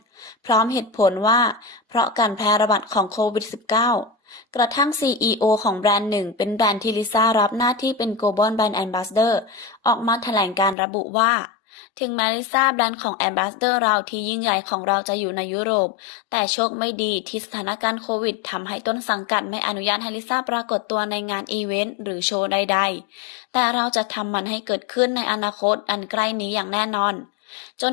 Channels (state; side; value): drops out; right; at 10.8 s